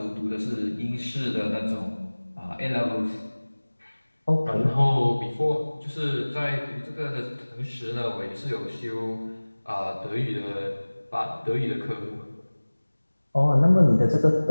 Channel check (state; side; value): inverted; both; correlation -1.00